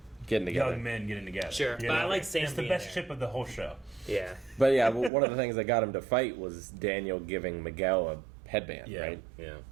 getting together. young men getting together. Sure, but I like Sam It's the being best there. ship of the whole show. Yeah. But yeah, one of the things that got him to fight was Daniel giving Miguel a headband, right? Yeah.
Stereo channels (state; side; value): drops out; left; at 5.1 s